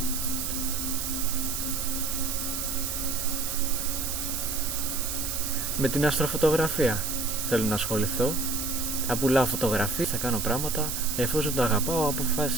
Με την αστροφωτογραφία θέλω να ασχοληθώ. Θα πουλάω φωτογραφίες, θα κάνω πράγματα. Εφόσον το αγαπάω,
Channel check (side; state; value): right; noise; hiss, 3 dB below the sound